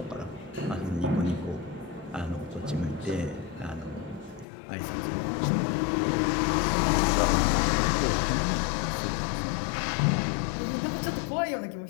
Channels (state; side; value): drops out; right; at 4.5 s